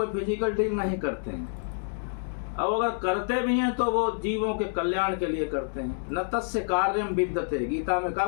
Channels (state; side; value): silent; right; digital silence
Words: फिजिकल डील नहीं करते हैं। अब अगर करते भी हैं तो वो जीवों के कल्याण के लिए करते हैं। न तस्य कार्यम विद्यते, गीता में कहा